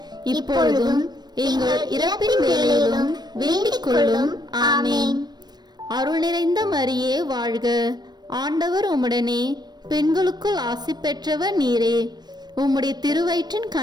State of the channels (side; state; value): left; late; 0.20 ms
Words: இப்பொழுதும் எங்கள் இறப்பின் வேளையிலும் வேண்டிக் கொள்ளும். ஆமீன். அருள் நிறைந்த மரியே வாழ்க. ஆண்டவர் உம்முடனே, பெண்களுக்குள் ஆசி பெற்றவர் நீரே. உம்முடைய திருவயிற்றின்